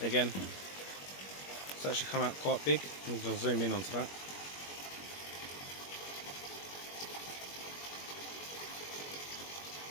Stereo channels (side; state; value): right; late; 21 ms